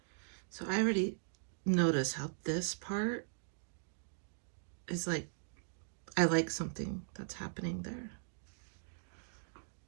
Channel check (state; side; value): silent; left; digital silence